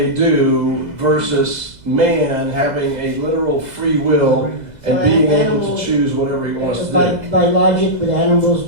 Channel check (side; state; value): left; late; 2.0 ms